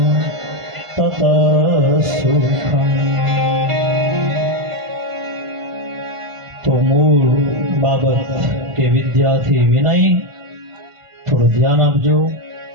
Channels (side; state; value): left; late; 1.5 ms